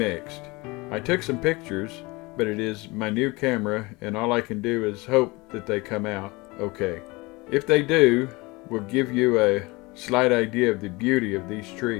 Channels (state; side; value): quieter; right; 24.1 dB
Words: I took some pictures, but it is my new camera and all I can do is hope that they come out okay. If they do, we'll give you a slight idea of the beauty of these